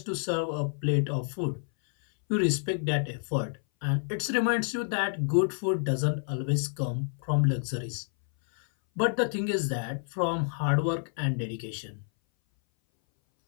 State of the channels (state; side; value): silent; right; 58 dB below the other